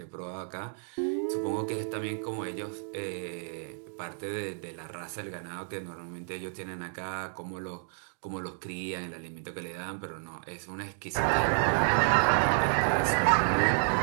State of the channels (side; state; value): left; silent; digital silence